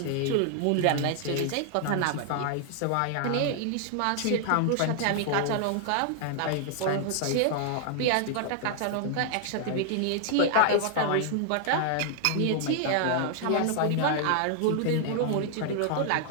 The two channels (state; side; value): different; both; correlation 0.00